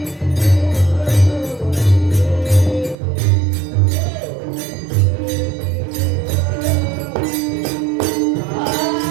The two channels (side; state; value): left; drops out; at 3.0 s